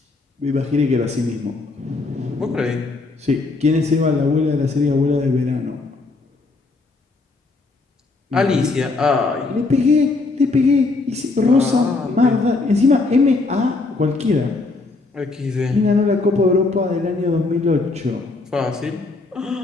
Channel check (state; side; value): quieter; right; 3.6 dB